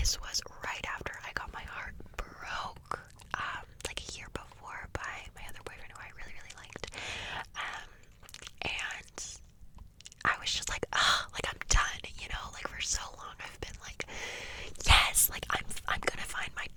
this was right after I got my heart broke, like a year before by my other boyfriend who I really, really liked. And I was just like, like I'm done, like for so long I've been like, yes, like I'm gonna find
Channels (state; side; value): identical; both; correlation 1.00